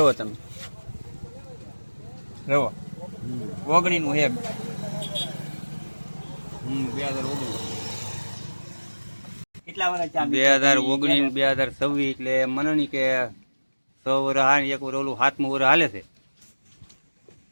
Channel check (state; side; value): inverted; both; correlation -1.00